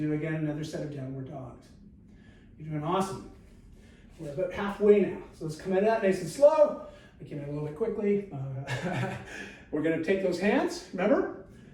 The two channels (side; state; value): both; identical; correlation 1.00